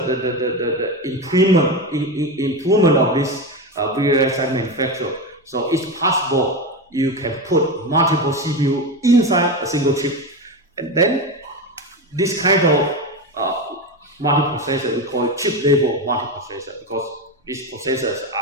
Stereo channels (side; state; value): both; normal; correlation 0.18